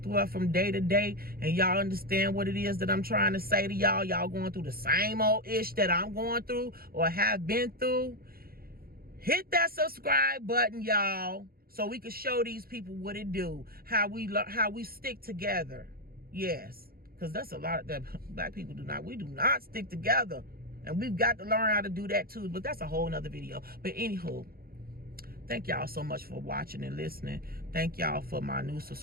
from day to day, and y'all understand what it is that I'm trying to say to y'all, y'all going through the same old ish that I'm going through or have been through, hit that subscribe button, y'all, so we can show these people what it do, how we stick together. Yes, because that's a lot that black people do not stick together. And we've got to learn how to do that too. But that's a whole nother video. But anywho, thank y'all so much for watching and listening. Thank y'all for my new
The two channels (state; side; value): late; left; 0.44 ms